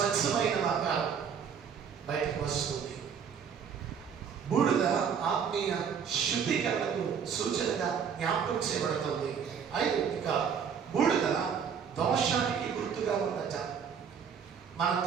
ఆకారం బయటకు వస్తుంది. బూడిద ఆత్మీయ శుద్ధీకరణకు సూచనగా జ్ఞాపకం చేయబడుతుంది. ఇక బూడిద దోషానికి గుర్తుగా ఉందట. మన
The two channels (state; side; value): quieter; left; 7.1 dB